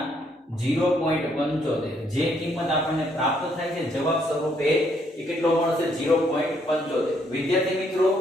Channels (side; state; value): both; normal; correlation 0.70